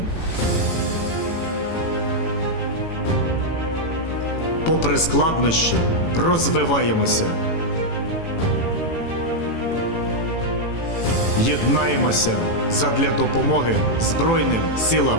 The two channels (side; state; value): right; late; 18 ms